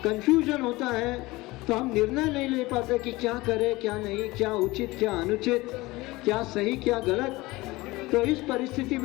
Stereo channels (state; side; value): quieter; right; 20.6 dB